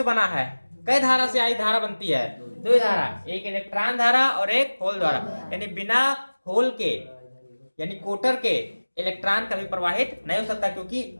बना है, कई धारा से आई धारा बनती है, 2 धारा, एक इलेक्ट्रॉन धारा और एक होल धारा। यानी बिना होल के, यानी कोटर के इलेक्ट्रॉन कभी प्रवाहित नहीं हो सकता, क्योंकि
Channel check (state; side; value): inverted; both; correlation -1.00